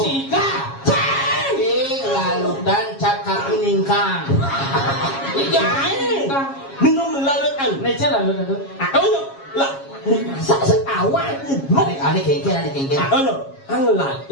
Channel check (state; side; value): late; right; 7.3 ms